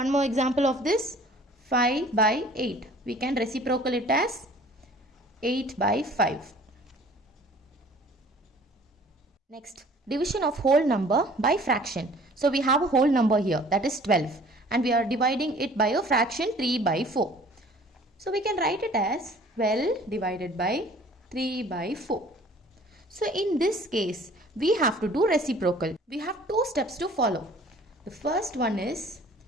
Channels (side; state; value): both; normal; correlation 0.51